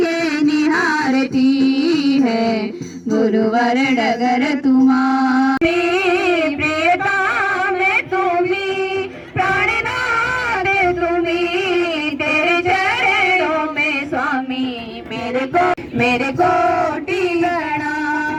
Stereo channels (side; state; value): both; identical; correlation 1.00